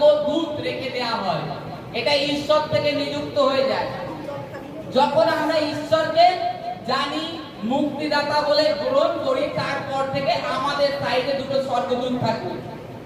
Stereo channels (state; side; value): identical; both; correlation 1.00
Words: রেখে দেওয়া হয়। এটা ঈশ্বর থেকে নিযুক্ত হয়ে যায়। যখন আমরা ঈশ্বরকে জানি, মুক্তিদাতা বলে গ্রহণ করি, তারপর থেকে আমাদের সাইডে দুটো স্বর্গদূত থাকে,